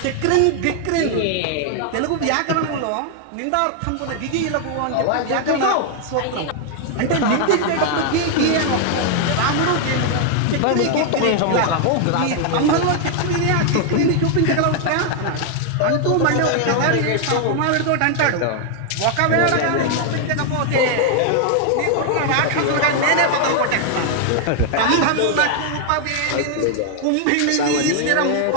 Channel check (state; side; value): different; both; correlation 0.00